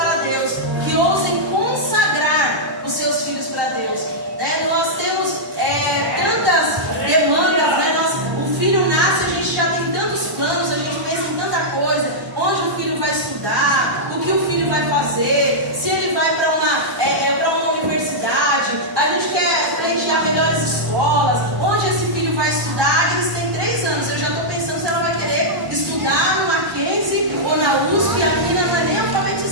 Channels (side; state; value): left; late; 1.2 ms